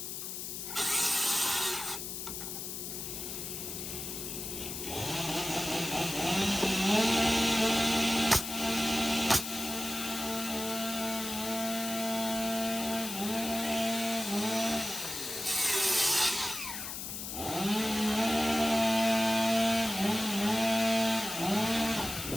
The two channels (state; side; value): noise; left; hiss, 6 dB below the sound